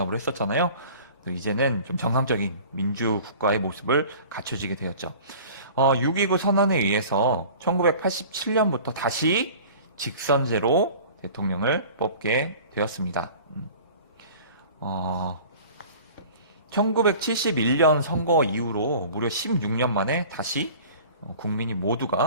했었잖아요. 이제는 좀 정상적인 민주국가의 모습을 갖춰지게 되었죠. 6.29 선언에 의해서 1987년부터 다시 직선제로 대통령을 뽑게 되었습니다. 1971년 선거 이후로 무려 16년 만에 다시 국민이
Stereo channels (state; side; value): inverted; both; correlation -0.43